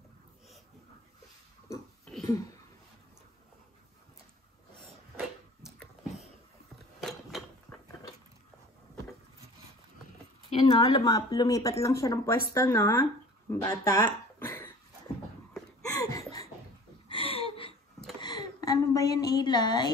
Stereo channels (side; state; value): both; normal; correlation 0.45